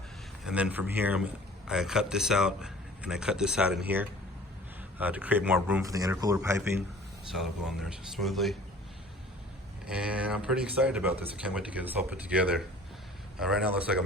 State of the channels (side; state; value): both; normal; correlation 0.48